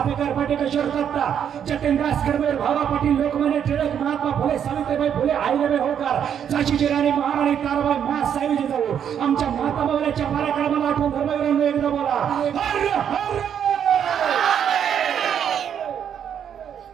पाटेश्वर दत्ता जतीनदास कडबेर भावा पाटील लोकमान्य टिळक महात्मा फुले सावित्रीबाई फुले अहिल्याबाई होळकर झाशीची राणी महाराणी ताराबाई महासाहेब जिजाऊ आमच्या माता मावल्याच्या पराक्रमाला आठवून धर्मवीरांना एकदा बोला हर हर.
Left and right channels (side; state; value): left; quieter; 8.7 dB